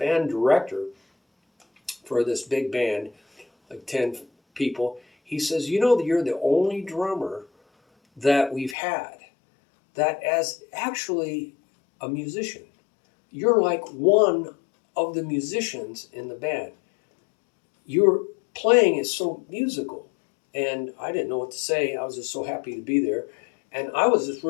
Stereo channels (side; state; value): right; drops out; at 8.8 s